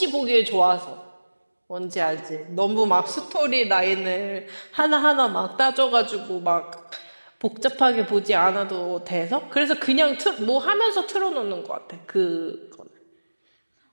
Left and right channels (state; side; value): inverted; both; correlation -1.00